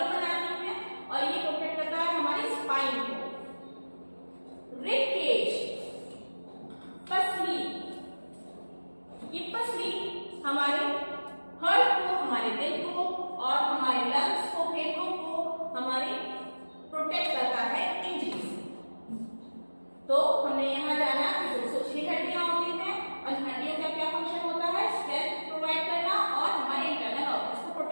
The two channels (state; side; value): inverted; both; correlation -1.00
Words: तो हमने यहाँ जाना कि 206 हड्डियां होती हैं और हड्डियों का क्या फंक्शन होता है, स्ट्रेंथ प्रोवाइड करना और हमारे इंटरनल ऑर्गन्स को